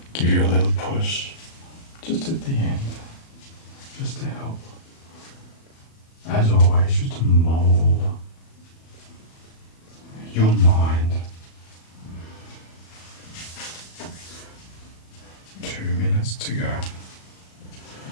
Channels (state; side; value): late; right; 37 ms